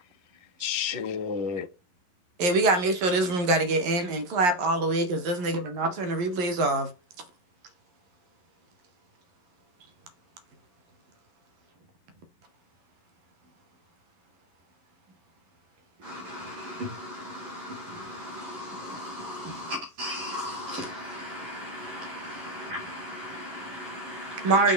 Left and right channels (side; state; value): left; late; 11 ms